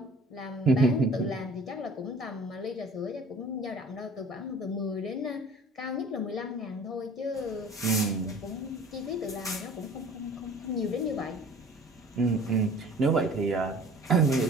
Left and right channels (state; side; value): normal; both; correlation 0.47